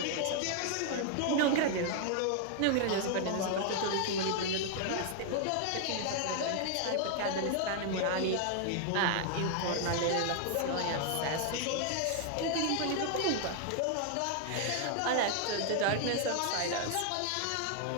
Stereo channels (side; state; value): both; different; correlation 0.00